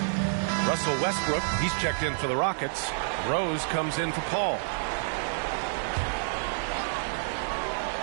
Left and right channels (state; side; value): silent; left; digital silence